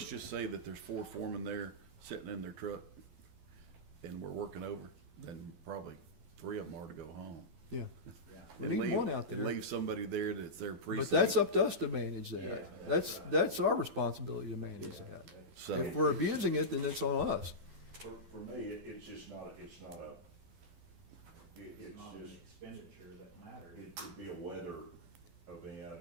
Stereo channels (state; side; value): late; left; 12 ms